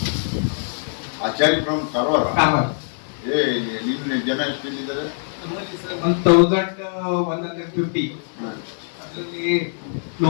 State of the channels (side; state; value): right; silent; 64 dB below the other